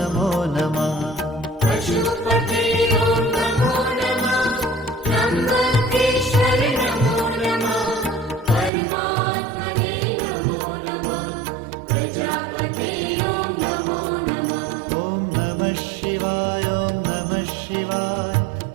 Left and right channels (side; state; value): left; drops out; at 8.7 s